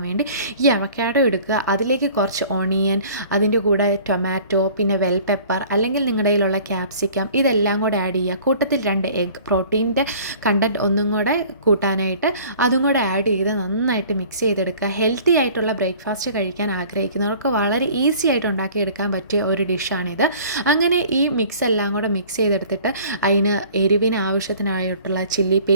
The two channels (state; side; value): inverted; both; correlation -0.49